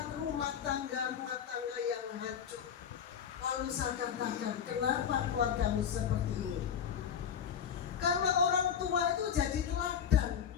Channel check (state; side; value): quieter; right; 8.1 dB